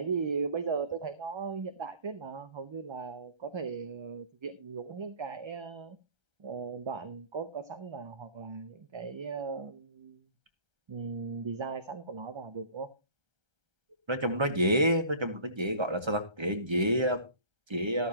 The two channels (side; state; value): left; late; 1.3 ms